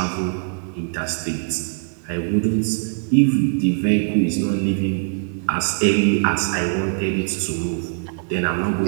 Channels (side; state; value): left; silent; digital silence